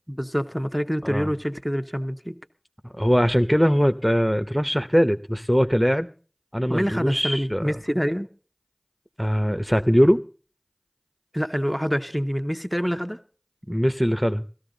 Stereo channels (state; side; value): identical; both; correlation 1.00